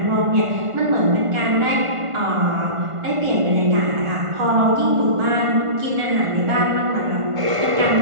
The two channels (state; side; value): late; left; 1.5 ms